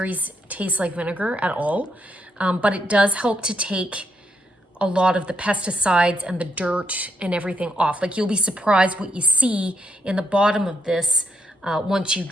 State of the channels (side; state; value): both; normal; correlation 0.78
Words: taste like vinegar at all, but it does help to take a lot of the pesticides and the dirt and everything off. Like you'll be surprised what you see in the bottom of this once you